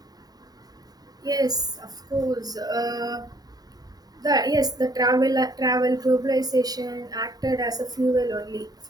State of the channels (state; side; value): late; left; 0.19 ms